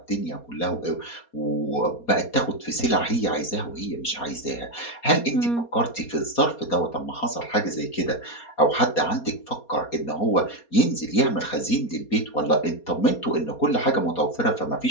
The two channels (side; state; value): right; late; 4.3 ms